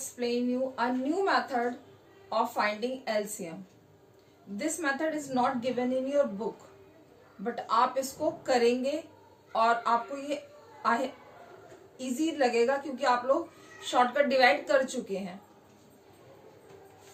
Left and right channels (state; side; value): identical; both; correlation 1.00